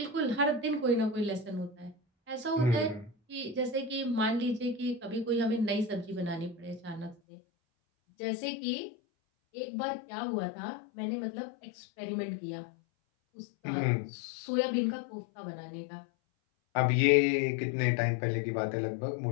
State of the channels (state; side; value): drops out; right; at 7.2 s